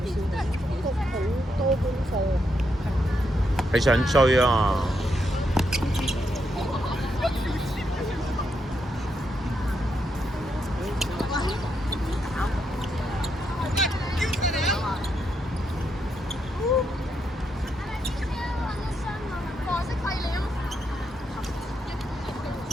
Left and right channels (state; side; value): normal; both; correlation 0.80